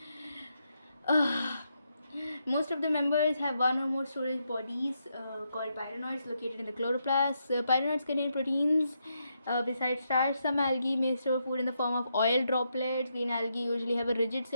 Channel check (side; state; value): both; inverted; correlation -0.81